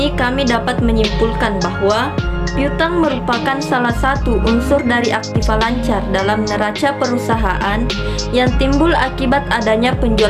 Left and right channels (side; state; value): both; identical; correlation 1.00